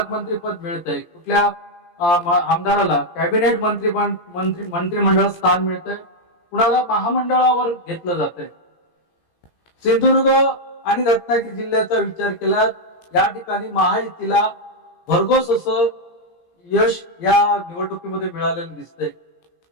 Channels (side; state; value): right; late; 17 ms